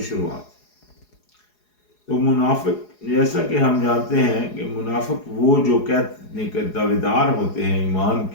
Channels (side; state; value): right; late; 4.8 ms